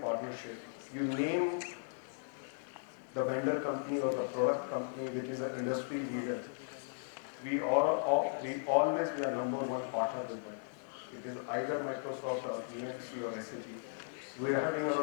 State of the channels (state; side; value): silent; right; 53 dB below the other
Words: you name the vendor company or the product company which is an industry leader. We always be a number one partner with them. It is either Microsoft or EMC or SAP. We are having